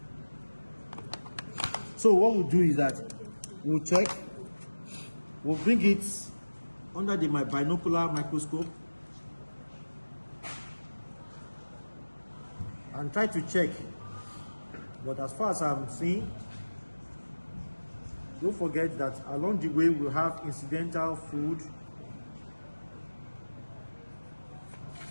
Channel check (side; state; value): both; inverted; correlation -1.00